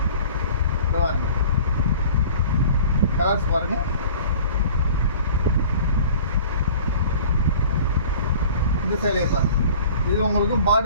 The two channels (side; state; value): both; inverted; correlation -0.45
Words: கலர்ஸ் பாருங்கள். இந்த சேலையை பாருங்கள். இது உங்களுக்கு